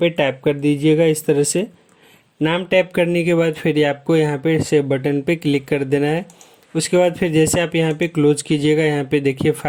टाइप कर दीजिएगा। इस तरह से नाम टाइप करने के बाद फिर आपको यहाँ पे सेव बटन पे क्लिक कर देना है। उसके बाद फिर जैसे आप यहाँ पे क्लोज कीजिएगा, यहाँ पे देखिए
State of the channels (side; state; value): both; identical; correlation 1.00